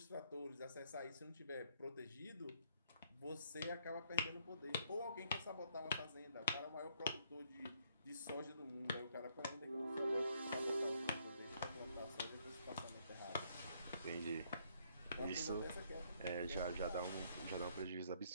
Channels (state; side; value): inverted; both; correlation -0.70